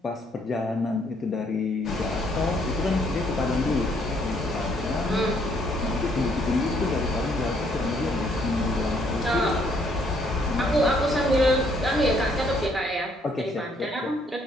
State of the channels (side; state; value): both; normal; correlation 0.67